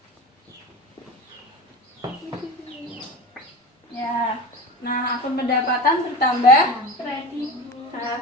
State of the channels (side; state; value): both; normal; correlation 0.30